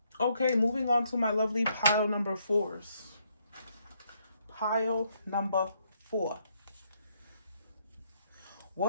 Okay, moving on to my lovely pile number 4s. Pile number 4.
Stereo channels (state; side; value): inverted; both; correlation -0.73